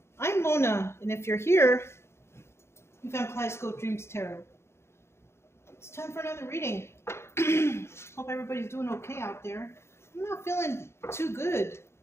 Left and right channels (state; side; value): late; right; 0.13 ms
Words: I'm Mona, and if you're here, you found Kaleidoscope Dreams Tarot. It's time for another reading. Hope everybody's doing okay out there. I'm not feeling too good.